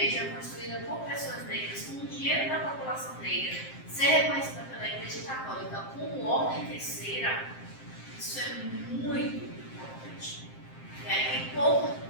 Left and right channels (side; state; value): right; late; 7.6 ms